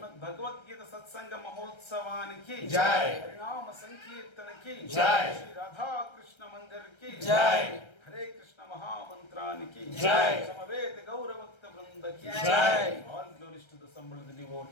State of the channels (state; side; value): late; right; 1.3 ms